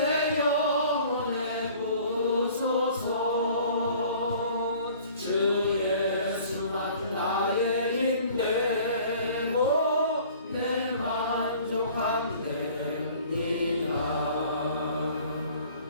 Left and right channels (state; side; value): inverted; both; correlation -0.51